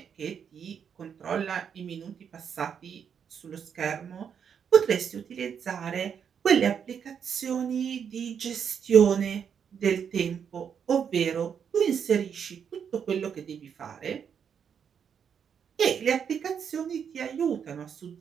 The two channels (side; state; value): left; quieter; 7.5 dB